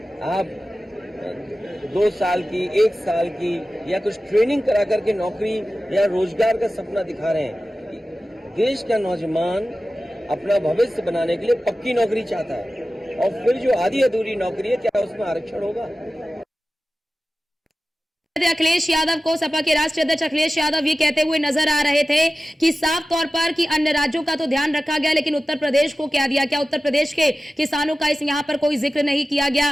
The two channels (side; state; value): both; normal; correlation 0.95